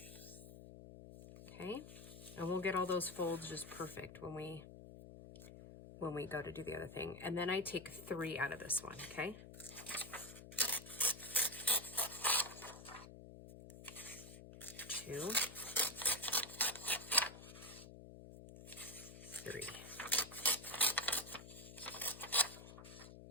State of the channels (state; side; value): noise; left; hum, 14 dB below the sound